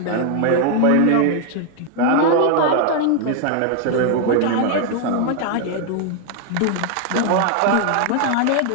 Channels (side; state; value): both; different; correlation 0.00